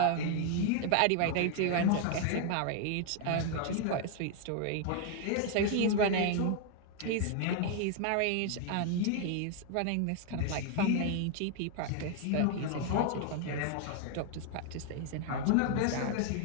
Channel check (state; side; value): different; both; correlation 0.00